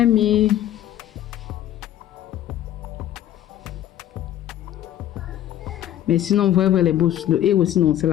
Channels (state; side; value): quieter; right; 12.1 dB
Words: mis. Mais sinon, vous voyez les boss, le héros sinon, c'est